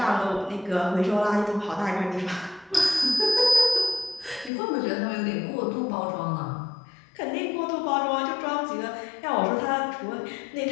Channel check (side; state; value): right; drops out; at 4.5 s